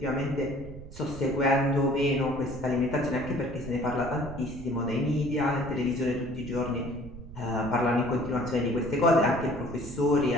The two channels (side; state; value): right; noise; rumble, 14 dB below the sound